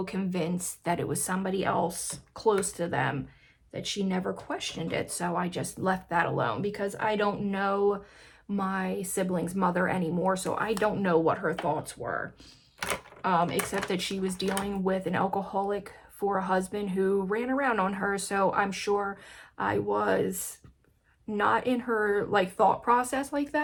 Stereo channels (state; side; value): identical; both; correlation 1.00